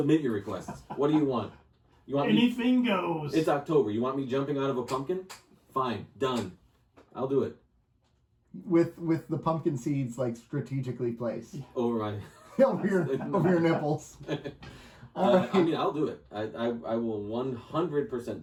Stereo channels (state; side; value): identical; both; correlation 1.00